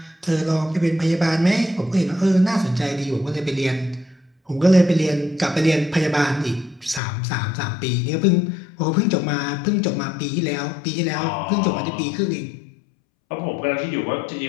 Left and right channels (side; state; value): right; drops out; at 7.0 s